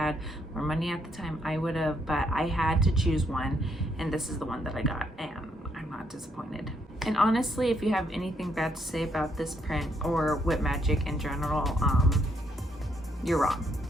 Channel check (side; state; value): both; normal; correlation 0.73